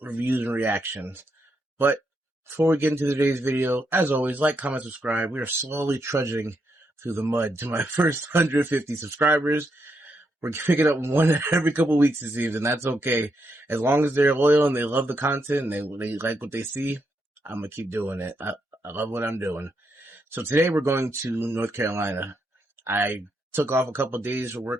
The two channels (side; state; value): both; normal; correlation 0.80